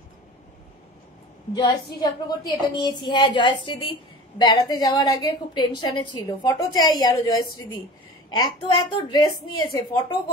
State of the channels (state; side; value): normal; both; correlation 0.38